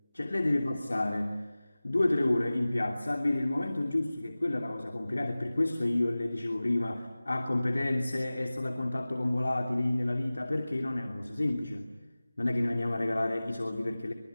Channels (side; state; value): both; inverted; correlation -0.98